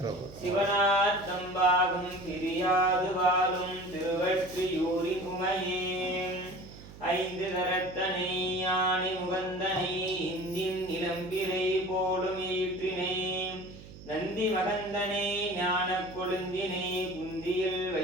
சிவனார்த்தம் பாகம் பிரியாது வாழும் திருவற்றியூரின் உமையேன் ஐந்து கரத்தனை யானை முகந்தனை இந்தின் இளம்பிரை போலும் ஈற்றினை நந்தி மகந்தனை ஞான கொழுந்தினை குந்தியில்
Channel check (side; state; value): right; noise; hum, 17 dB below the sound